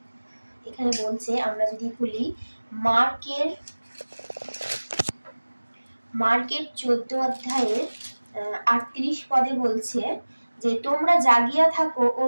এখানে বলছে, আমরা যদি খুলি মার্কের 14 অধ্যায়ের 38 পদে বলছে যে, তোমরা জাগিয়া থাকো ও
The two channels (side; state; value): both; inverted; correlation -1.00